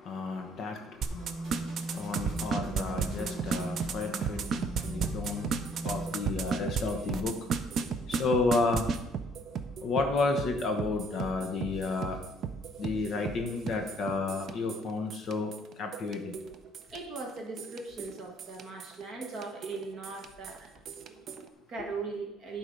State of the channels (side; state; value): both; normal; correlation 0.62